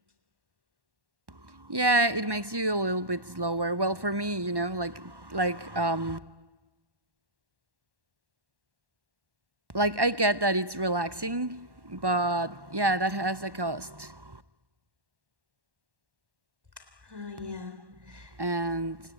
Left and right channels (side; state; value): left; late; 1.1 ms